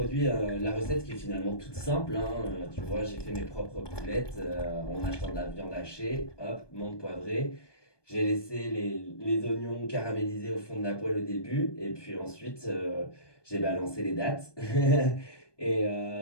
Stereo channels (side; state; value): right; late; 1.2 ms